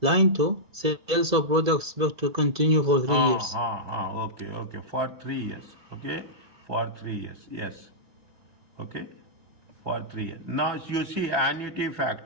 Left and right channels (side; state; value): left; late; 2.0 ms